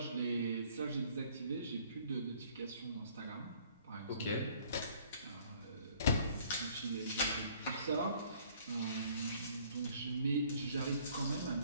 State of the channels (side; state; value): both; inverted; correlation -0.57